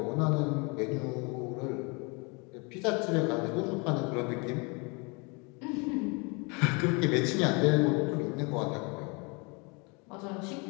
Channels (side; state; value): right; quieter; 30.4 dB